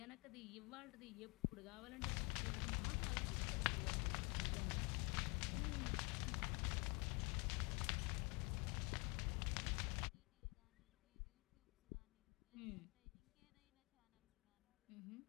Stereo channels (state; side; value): quieter; right; 30.6 dB